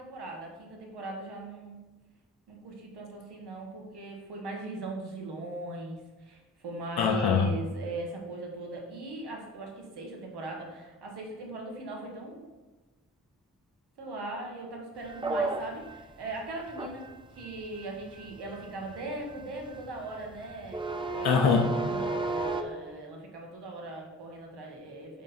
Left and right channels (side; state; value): both; normal; correlation 0.39